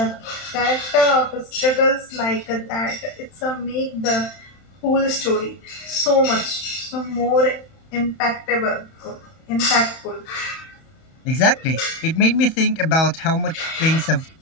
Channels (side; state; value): right; late; 31 ms